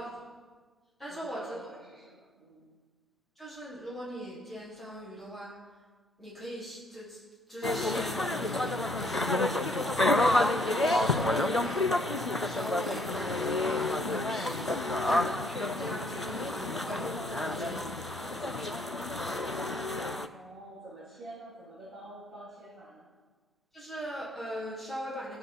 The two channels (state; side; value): normal; both; correlation 0.66